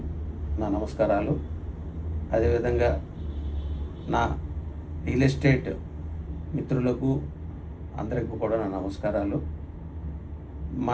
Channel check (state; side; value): identical; both; correlation 1.00